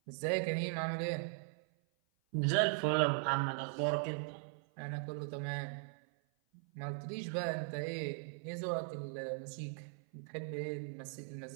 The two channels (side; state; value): left; silent; 52 dB below the other